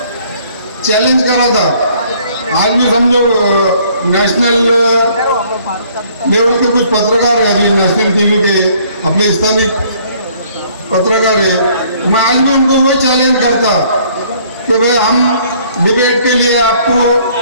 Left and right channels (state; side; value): inverted; both; correlation -0.60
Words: चैलेंज करा था। आज भी समझो नेशनल लेवल के कुछ पत्रकार है, अभी नेशनल टीवी के अपने स्थानीय पत्रकार है, तो मैं आज भी उनको वो चैलेंज करता कि भाई हम डिबेट के लिए आपको